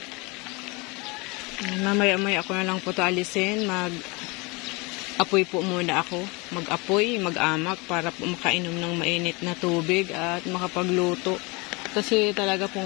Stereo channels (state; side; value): quieter; right; 27.1 dB